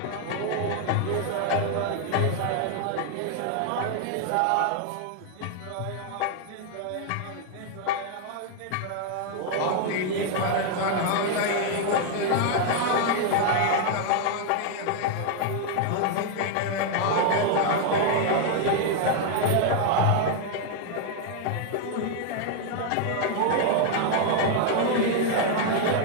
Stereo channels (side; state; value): both; different; correlation 0.00